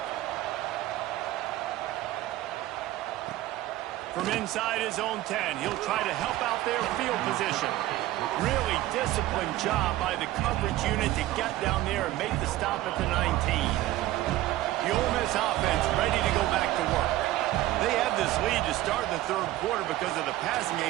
From inside his own 10, he'll try to help out their field position. Really disciplined job by the coverage unit to get down there and make the stop at the 19. The Ole Miss offense ready to go back to work. They had this lead to start the third quarter because of the passing game.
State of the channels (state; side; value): quieter; left; 15.6 dB